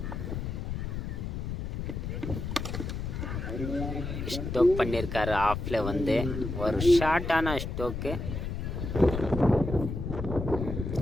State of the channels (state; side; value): noise; left; rumble, 4 dB below the sound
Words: ஸ்டோக் பண்ணியிருக்காரு. ஆஃபில் வந்து ஒரு ஷார்ட்டான ஸ்டோக்கு.